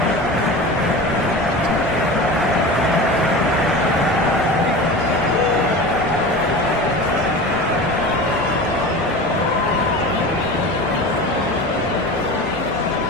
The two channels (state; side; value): normal; both; correlation 0.32